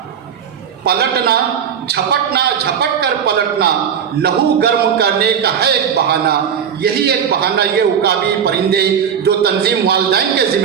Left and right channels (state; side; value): quieter; left; 7.9 dB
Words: پلٹنا جھپٹنا جھپٹ کر پلٹنا، لہو گرم کرنے کا ہے ایک بہانہ۔ یہی ایک بہانہ یہ عقابی پرندے جو تنظیم والدین کے